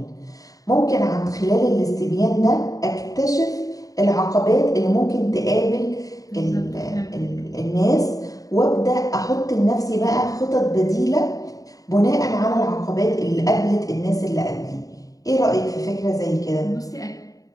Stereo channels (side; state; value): right; late; 0.17 ms